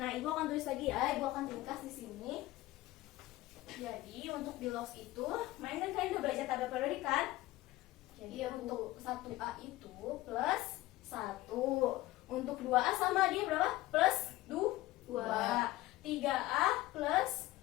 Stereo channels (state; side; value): quieter; right; 17.5 dB